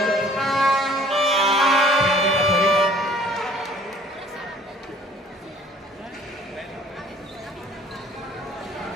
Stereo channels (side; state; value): both; normal; correlation 0.54